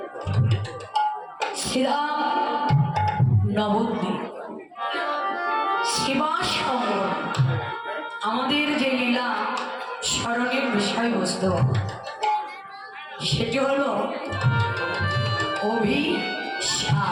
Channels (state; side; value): identical; both; correlation 1.00